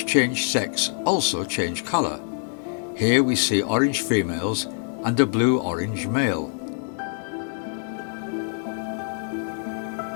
change sex also change colour. Here we see orange females and a blue-orange male.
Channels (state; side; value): silent; right; digital silence